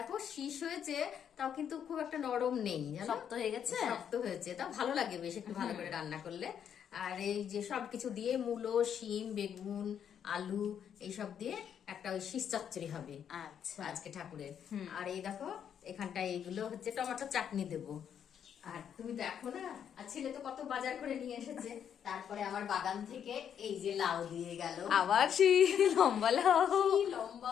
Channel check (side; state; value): right; quieter; 8.6 dB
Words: শীষ হয়েছে, তাও কিন্তু খুব একটা নরম নেই, শক্ত হয়ে গেছে। শক্ত হয়েছে, তাও ভালো লাগে বেশ একটু ভালো করে রান্না করলে। আর এই যে সবকিছু দিয়ে মূলো, শিম, বেগুন, আলু এইসব দিয়ে একটা ওই শীষ চচ্চড়ি হবে আচ্ছা আজকে ঠাকুরের। আর এই দেখো এখানটায় এইগুলো হচ্ছে টমেটো চাটনি দেবো। আর তুমি দেখো না, আর ছেলে তো কত বাজার করে নিয়ে এসেছে। তারপরে আমার বাগান থেকে এই যে লাউ দিয়ে গেল, আবার সেই লম্বা লাউ। কি